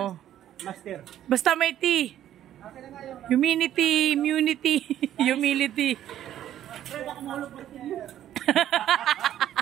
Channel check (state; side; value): quieter; left; 11.6 dB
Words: Master. Basta may T. Humility, immunity, humility.